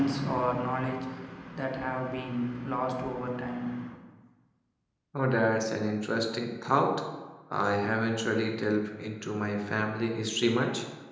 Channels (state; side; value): identical; both; correlation 1.00